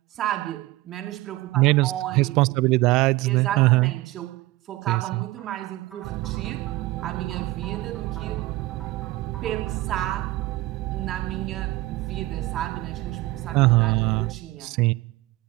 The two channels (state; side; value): quieter; left; 18.7 dB